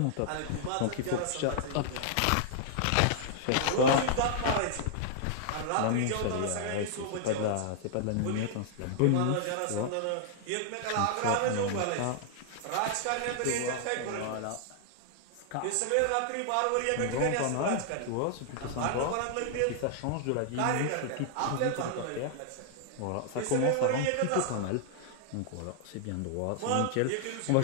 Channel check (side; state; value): both; different; correlation -0.01